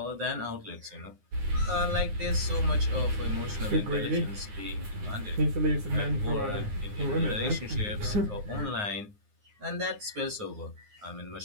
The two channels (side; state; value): left; late; 9.7 ms